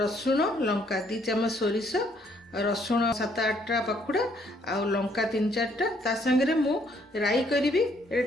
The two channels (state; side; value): normal; both; correlation 0.67